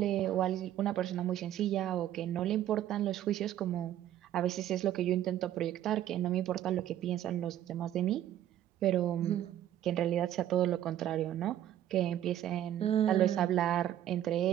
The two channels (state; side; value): quieter; left; 11.9 dB